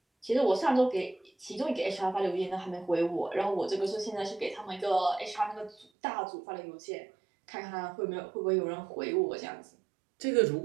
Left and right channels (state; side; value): drops out; left; at 5.9 s